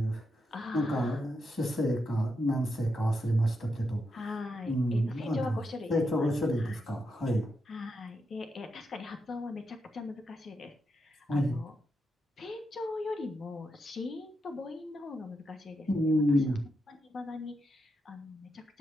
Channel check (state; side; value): normal; both; correlation 0.84